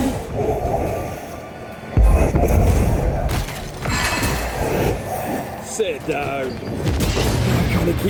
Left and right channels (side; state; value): both; identical; correlation 1.00